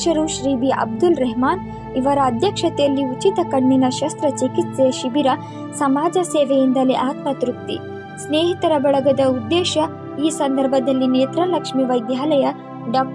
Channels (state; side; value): identical; both; correlation 1.00